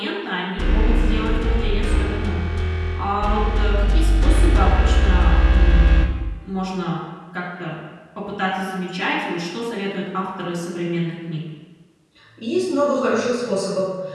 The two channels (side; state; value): both; identical; correlation 1.00